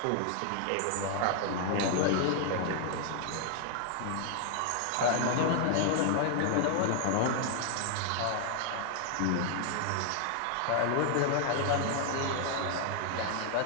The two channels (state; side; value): different; both; correlation 0.00